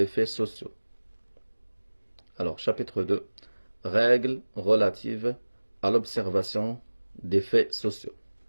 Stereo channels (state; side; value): inverted; both; correlation -1.00